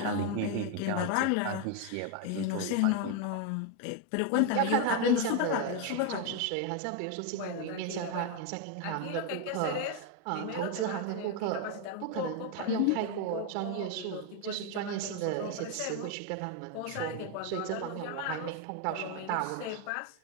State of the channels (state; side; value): different; both; correlation 0.01